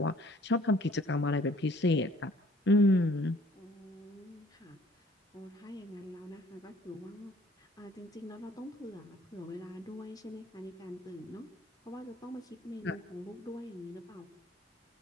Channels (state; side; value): normal; both; correlation 0.57